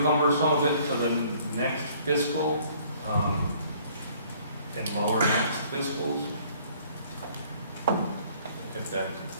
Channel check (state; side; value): inverted; both; correlation -0.58